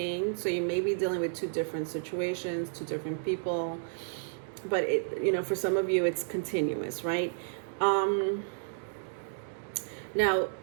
So you may be dealing with two different situations, two different people. But for some of you, it's continuous, right? Now,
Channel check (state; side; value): silent; left; digital silence